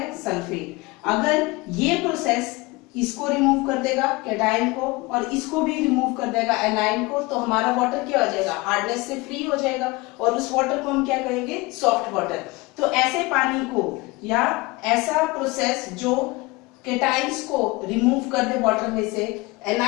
सल्फेट. अगर ये प्रोसेस इसको रिमूव कर देगा केटाइन को और इसको भी रिमूव कर देगा एनाइन को, तो हमारा वाटर क्या हो जाएगा, हार्डनेस से फ्री हो जाएगा और उस वाटर को हम क्या कहेंगे, सॉफ्ट वाटर. तो ऐसे पानी को या ऐसा प्रोसेस जो केटाइंस को रिमूव कर दे वाटर में से,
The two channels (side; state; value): right; quieter; 23.2 dB